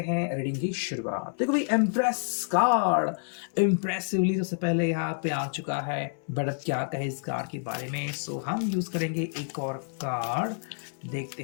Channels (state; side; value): silent; right; 59 dB below the other